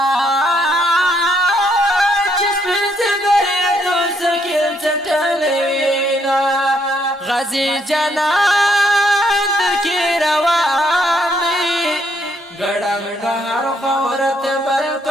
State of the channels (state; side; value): normal; both; correlation 0.72